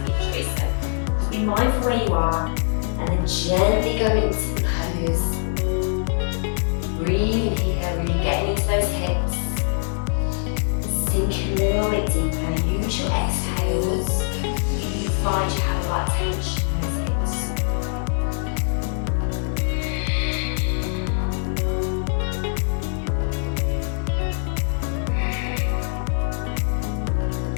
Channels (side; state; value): right; silent; 63 dB below the other